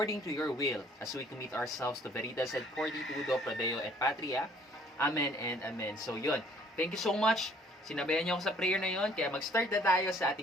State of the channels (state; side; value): normal; both; correlation 0.59